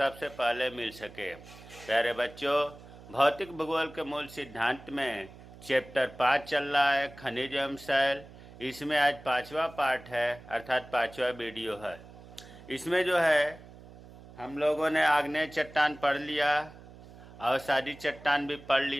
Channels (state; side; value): noise; right; hum, 19 dB below the sound